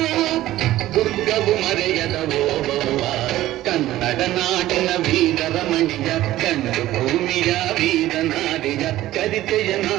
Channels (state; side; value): quieter; left; 15.0 dB